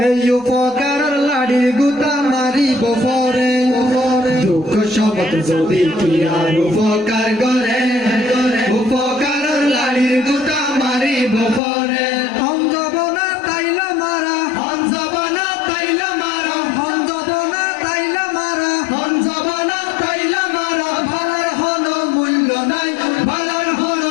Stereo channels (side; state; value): right; drops out; at 11.6 s